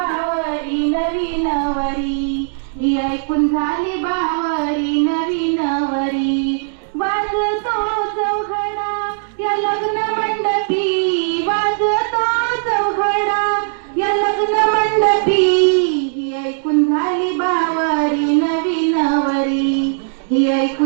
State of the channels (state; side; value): silent; left; digital silence